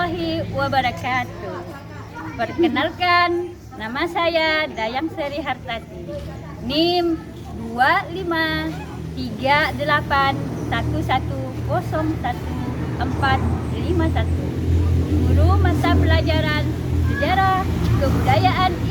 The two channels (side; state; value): both; identical; correlation 1.00